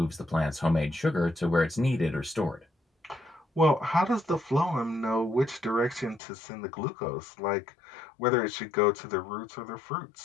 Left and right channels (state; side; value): drops out; right; at 6.2 s